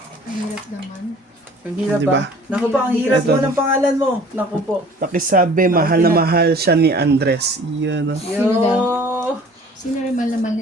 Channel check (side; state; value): both; normal; correlation 0.49